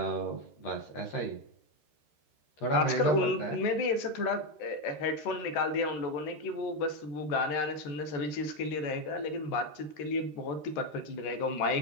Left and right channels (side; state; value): right; late; 13 ms